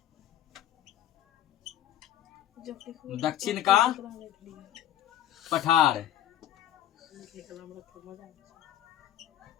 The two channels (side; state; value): right; quieter; 11.7 dB